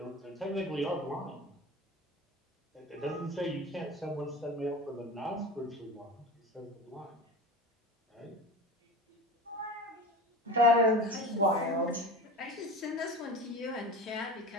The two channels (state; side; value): normal; both; correlation 0.31